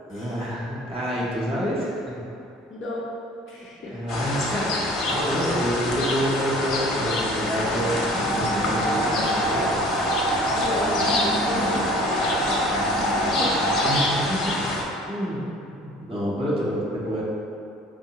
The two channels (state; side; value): normal; both; correlation 0.48